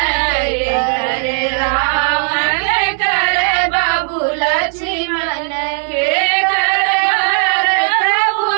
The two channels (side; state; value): left; silent; 58 dB below the other